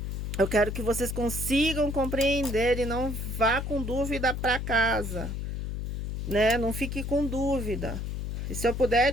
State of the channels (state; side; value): noise; left; hum, 4 dB below the sound